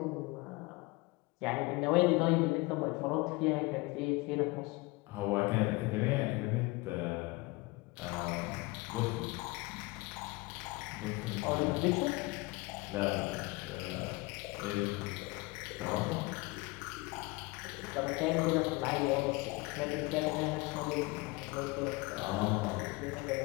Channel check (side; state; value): right; quieter; 24.0 dB